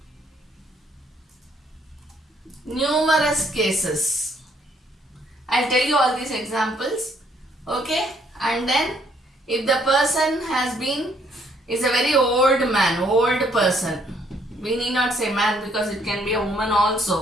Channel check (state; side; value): normal; both; correlation 0.68